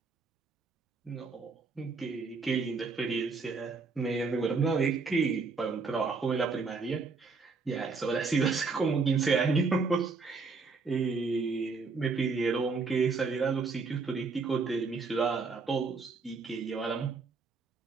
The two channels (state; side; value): quieter; left; 4.5 dB